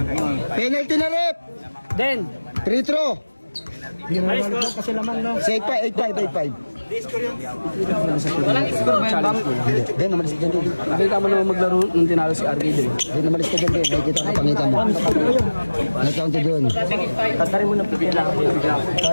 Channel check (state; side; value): inverted; both; correlation -1.00